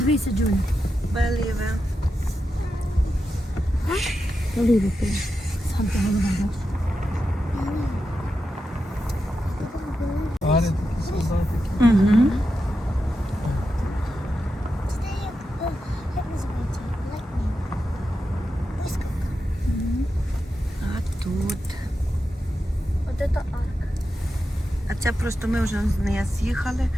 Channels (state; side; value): normal; both; correlation 0.89